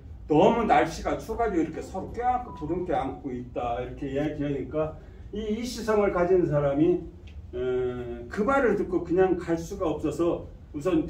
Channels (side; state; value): both; identical; correlation 1.00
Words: 너무 날씨가 추워가지고 이렇게 서로 껴안고 부둥켜 안고 있다 이렇게 이야기하니까 이 시성을 가진 사람이 그 말을 듣고 그냥 갈 수가 없어서 우선